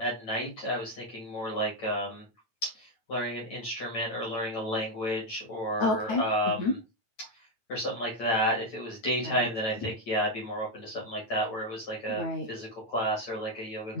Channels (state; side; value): late; right; 8.9 ms